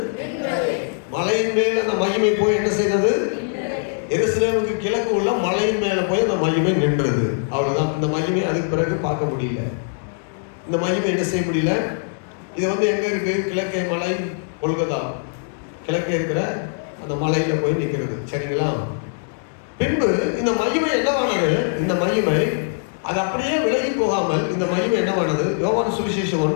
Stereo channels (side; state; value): right; silent; 64 dB below the other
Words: மலையின் மேல் அந்த மகிமை போய் என்ன செய்தது? எருசலேமுக்கு கிழக்கு உள்ள மலையின் மேல போய் அந்த மகிமை நின்றது. அவ்வளவுதான். இந்த மகிமை அதுக்கு பிறகு பார்க்க முடியல. இந்த மகிமை என்ன செய்ய முடியல. இது வந்து எங்க இருக்கு? கிழக்கே மலை, கொல்கத்தா கிழக்கே இருக்கிற அந்த மலையில போய் நிற்கிறது. சரிங்களா? பின்பு இந்த மகிமை என்னவானது? இந்த மகிமை அது அப்படியே விலகி போகாமல் இந்த மகிமை என்னவானது? யோவான் சுவிசேஷம்